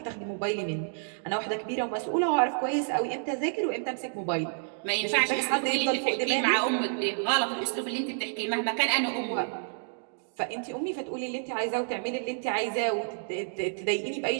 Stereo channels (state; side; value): silent; left; digital silence